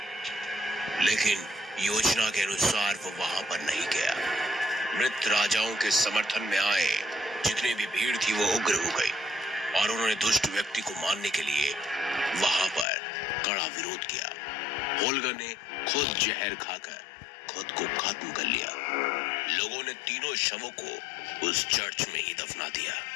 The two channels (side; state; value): right; drops out; at 12.9 s